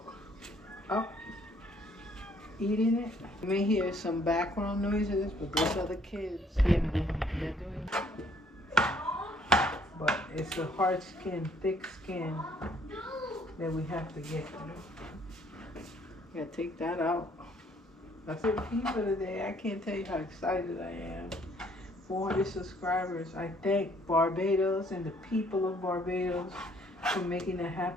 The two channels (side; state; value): both; normal; correlation 0.63